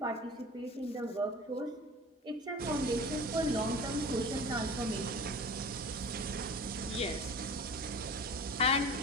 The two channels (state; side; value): normal; both; correlation 0.37